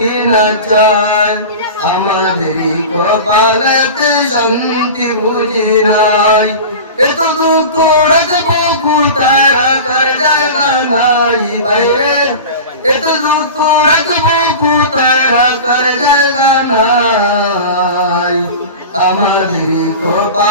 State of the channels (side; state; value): both; inverted; correlation -0.32